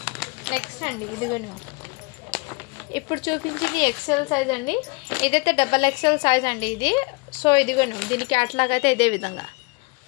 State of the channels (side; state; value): right; quieter; 28.2 dB